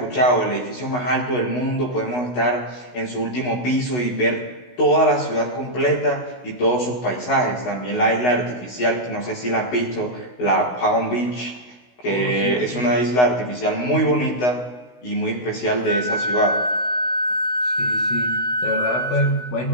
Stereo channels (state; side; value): late; right; 16 ms